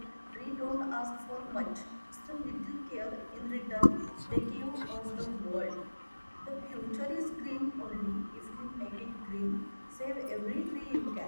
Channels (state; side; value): inverted; both; correlation -1.00